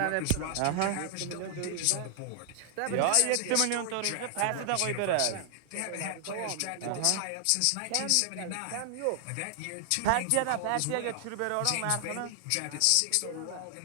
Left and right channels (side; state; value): both; different; correlation 0.00